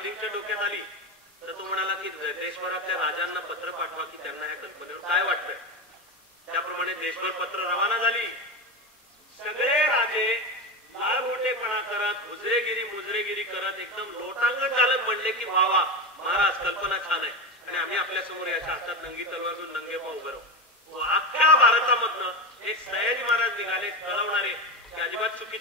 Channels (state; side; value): normal; both; correlation 0.18